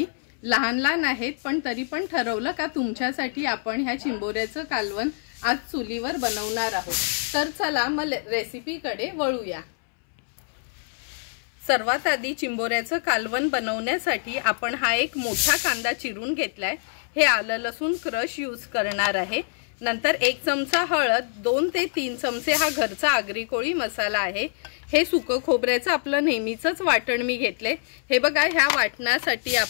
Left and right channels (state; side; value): silent; right; 61 dB below the other